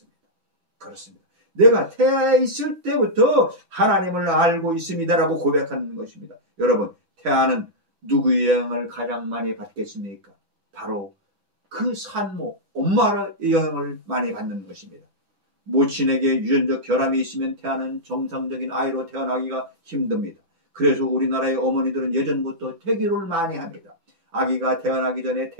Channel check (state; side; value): late; left; 6.0 ms